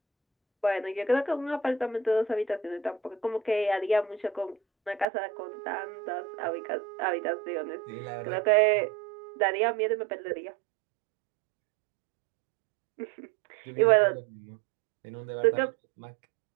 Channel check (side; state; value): left; drops out; at 5.1 s